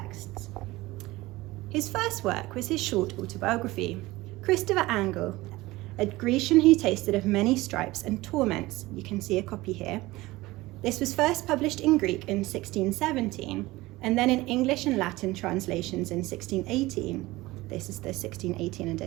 His first work was his short autobiography, Christopher Angel, a Grecian who tasted of many stripes and torments. You can see a copy here. This was first published in Greek in 1617, and then in English and Latin translations in 1618. This is the 1618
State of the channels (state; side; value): quieter; left; 19.4 dB